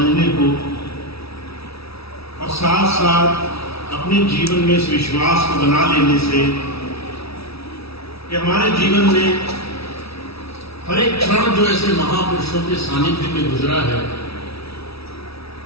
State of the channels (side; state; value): right; late; 0.77 ms